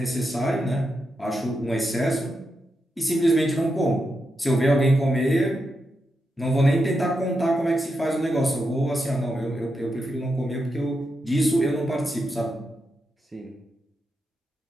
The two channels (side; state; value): both; normal; correlation 0.86